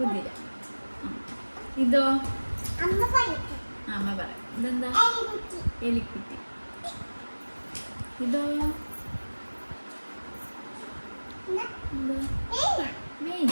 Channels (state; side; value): inverted; both; correlation -1.00